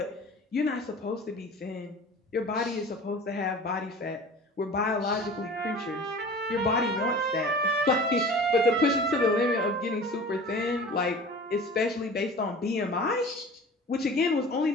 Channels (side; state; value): both; normal; correlation 0.40